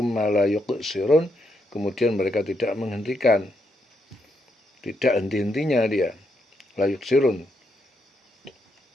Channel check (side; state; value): both; normal; correlation 0.79